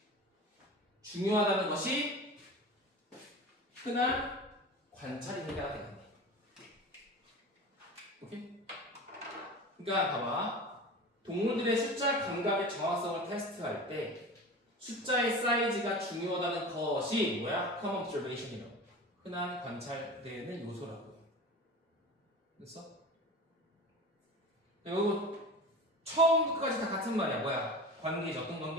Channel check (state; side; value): normal; both; correlation 0.33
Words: 중요하다는 것이 흔한 관찰이 해결가 되겠네. 오케이? 그러니까 봐봐. 동물들의 숫자 감각의 정확성을 테스트할 때 숫자의 사이즈가 중요하다는 것이 뭐야? common observation이라고. 흔한 관찰되는 요소라고요. 됐어? 이거 처음부터까지 다 같은 말이야. 뭐야? 관계죠. 어떤